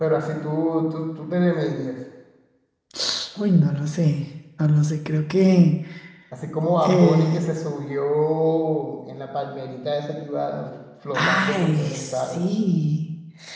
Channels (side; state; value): both; identical; correlation 1.00